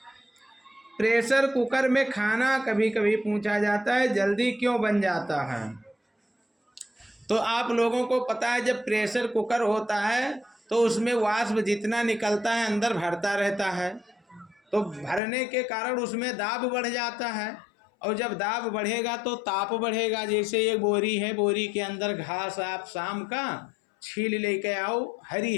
प्रेशर कुकर में खाना कभी कभी पूछा जाता है जल्दी क्यों बन जाता है? तो आप लोगों को पता है जब प्रेशर कुकर होता है तो उसमें वाष्प जितना निकलता है अंदर भरता रहता है, तो भरने के कारण उसमें दाब बढ़ जाता है। और जब दाब बढ़ेगा तो ताप बढ़ेगा। जैसे एक बोरी है, बोरी के अंदर घास आप शाम का छील लेके आओ, हरी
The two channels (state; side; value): drops out; right; at 15.2 s